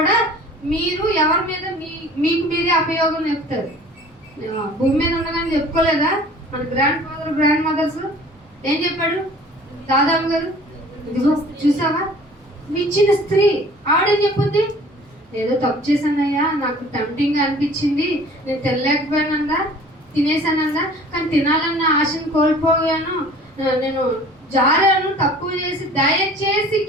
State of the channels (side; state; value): both; normal; correlation 0.48